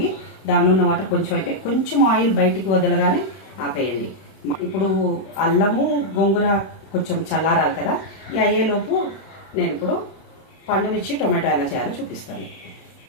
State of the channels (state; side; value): late; right; 31 ms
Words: దానిలో ఉన్న వాటర్ కొంచెం అయితే కొంచెం ఆయిల్ బయటికి వదలగానే ఆపేయండి. ఇప్పుడు అల్లము గోంగూర కొంచెం చల్లారాలి కదా, ఈ అయ్యేలోపు నేను ఇప్పుడు పండుమిర్చి టొమాటో ఎలా చేయాలో చూపిస్తాను.